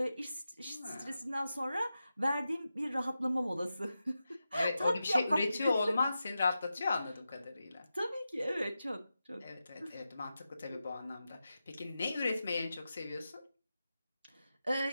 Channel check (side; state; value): both; inverted; correlation -0.91